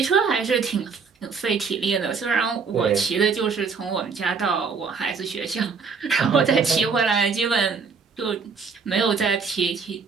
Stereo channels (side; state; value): left; quieter; 5.3 dB